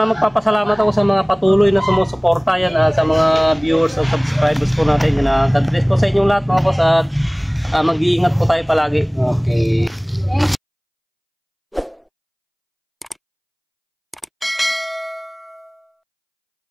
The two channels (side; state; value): both; identical; correlation 1.00